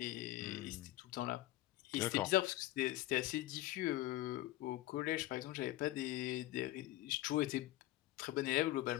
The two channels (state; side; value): quieter; right; 15.9 dB